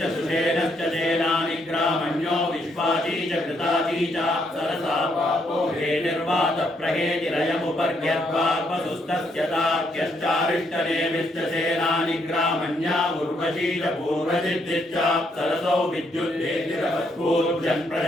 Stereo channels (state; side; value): normal; both; correlation 0.74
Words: सुषेणश्च सेनानि ग्रामण्यो विश्वाची च कृताची च सरसा पापो हेतिर्वात प्रहेतिरयमुपर्ग्यद्वार्पसुस्तस्य तार्क्यश्चारिष्टनेमिश्च सेनानि ग्रामण्या उर्वशी च पूर्वजिद्दिश्च सरसौ विद्युद्देतिरवत्पूर्जन्